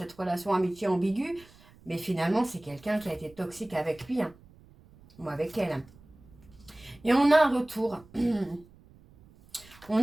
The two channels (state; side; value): noise; right; rumble, 25 dB below the sound